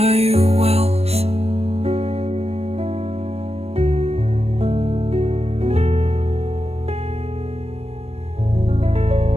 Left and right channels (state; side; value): late; left; 0.30 ms